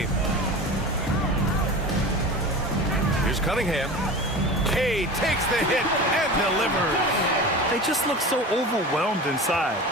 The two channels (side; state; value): both; normal; correlation 0.32